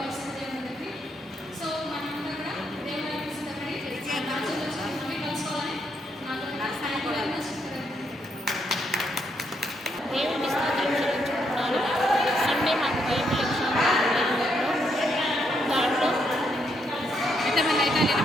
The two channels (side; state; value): both; normal; correlation 0.77